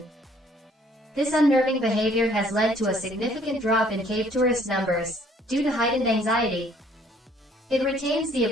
This unnerving behavior has led to a significant drop in cave tourist numbers, due to heightened anxiety. It retains the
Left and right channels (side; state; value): both; normal; correlation 0.60